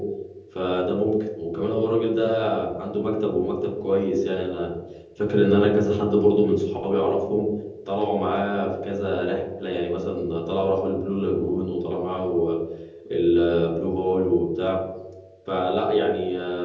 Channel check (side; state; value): both; identical; correlation 1.00